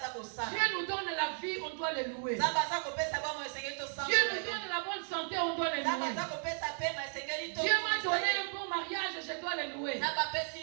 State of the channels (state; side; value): silent; left; 55 dB below the other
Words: Dieu nous donne la vie, on doit le louer. Dieu nous donne la bonne santé, on doit le louer. Dieu m'a donné un bon mariage, je dois le louer.